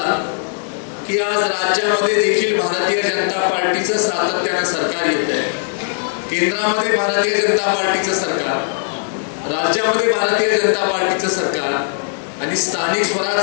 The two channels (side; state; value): right; silent; digital silence